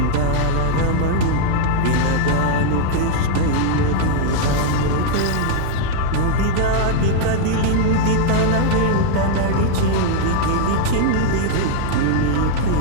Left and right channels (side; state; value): both; different; correlation -0.01